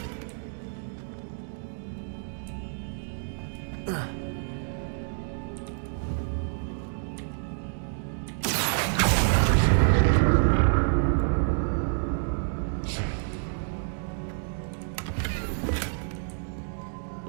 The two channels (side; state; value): left; silent; digital silence